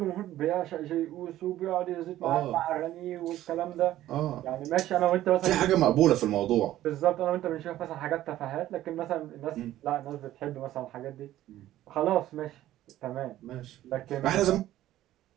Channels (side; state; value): left; quieter; 13.9 dB